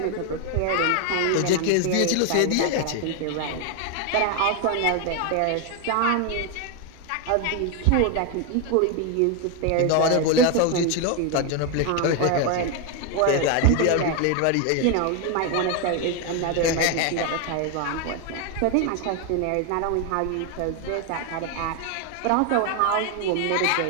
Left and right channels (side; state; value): both; different; correlation 0.01